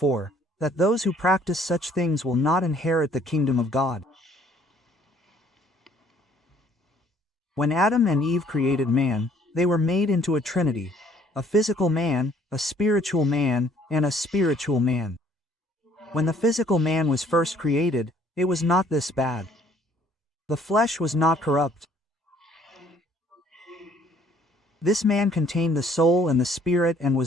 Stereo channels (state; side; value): normal; both; correlation 0.60